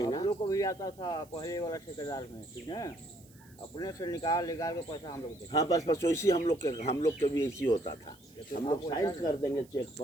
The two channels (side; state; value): right; noise; hiss, 27 dB below the sound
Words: हम लोग को भी आता था पहले वाला ठेकेदार में, ठीक है, अपने से निकाल के पैसा हम लोग देते। हाँ बस वैसे हम लोग के भी ऐसी होता था। हम लोग साइन कर देंगे चेक